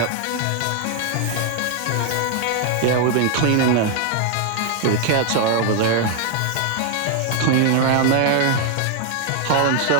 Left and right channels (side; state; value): both; different; correlation 0.00